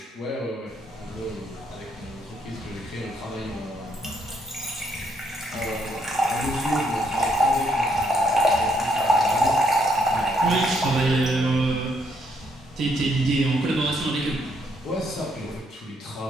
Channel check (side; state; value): both; normal; correlation 0.73